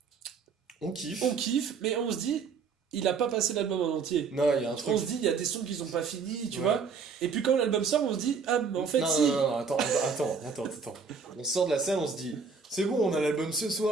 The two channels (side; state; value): left; quieter; 5.4 dB